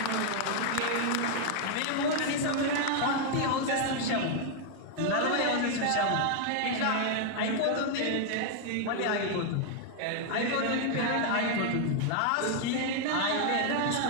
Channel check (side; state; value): both; different; correlation 0.00